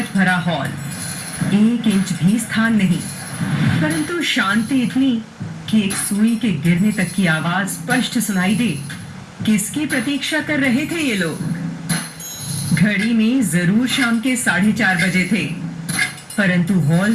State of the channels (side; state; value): both; identical; correlation 1.00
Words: भरा हॉल, 1 इंच भी स्थान नहीं, परंतु शांति इतनी कि एक सुई के गिरने तक की आवाज स्पष्ट सुनाई दे। किसकी प्रतीक्षा कर रहे थे ये लोग? घड़ी में जरूर शाम के 4:30 बजे थे, परंतु हॉल